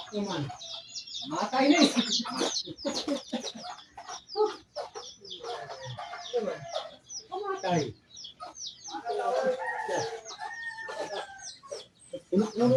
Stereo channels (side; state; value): both; identical; correlation 1.00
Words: Naman. Matay na eh. Naman. Matay. Ano